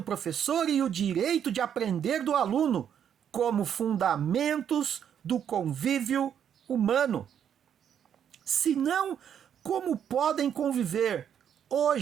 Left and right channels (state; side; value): quieter; left; 8.8 dB